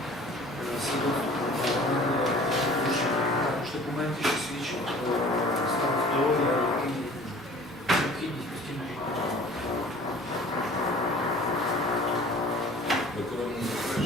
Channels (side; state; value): both; normal; correlation 0.47